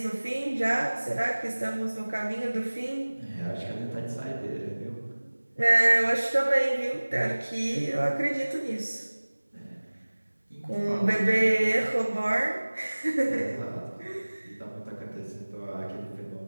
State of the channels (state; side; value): inverted; both; correlation -1.00